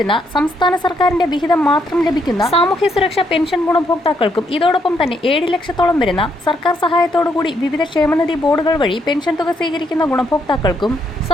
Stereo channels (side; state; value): both; normal; correlation 0.75